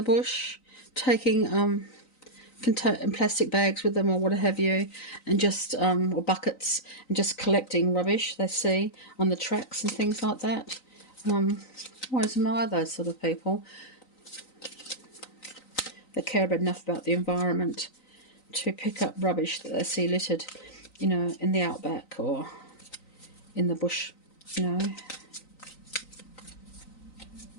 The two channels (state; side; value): late; right; 3.9 ms